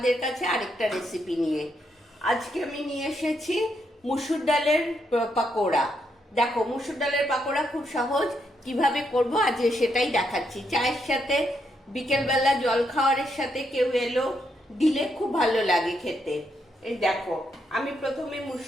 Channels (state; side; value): normal; both; correlation 0.78